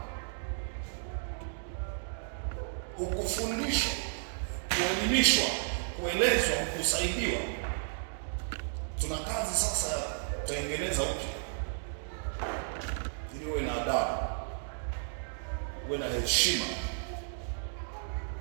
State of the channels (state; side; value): silent; left; digital silence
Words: hukufundishwa, kuelimishwa, kuelezwa, kusaidiwa, tuna kazi sasa ya kutengeneza upya, ili uwe na adabu, uwe na heshima,